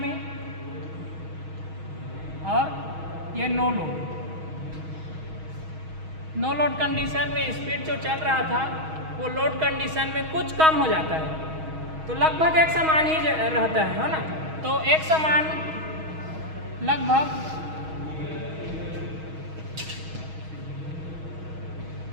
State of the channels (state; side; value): late; left; 6.3 ms